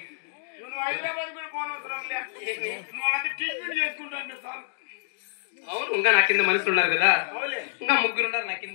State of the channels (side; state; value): right; silent; digital silence